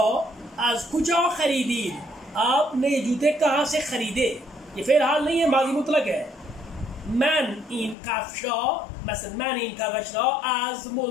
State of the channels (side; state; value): right; drops out; at 8.0 s